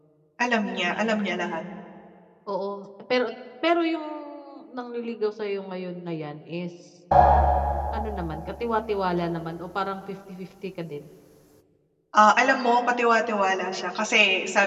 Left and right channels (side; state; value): both; identical; correlation 1.00